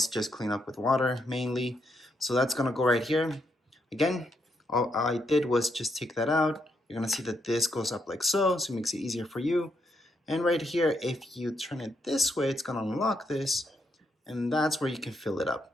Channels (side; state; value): both; normal; correlation 0.78